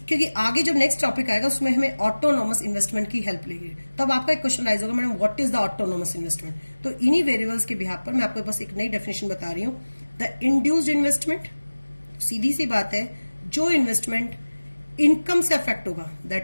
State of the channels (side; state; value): both; inverted; correlation -1.00